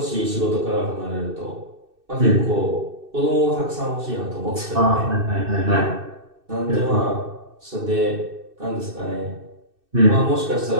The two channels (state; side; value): late; left; 2.6 ms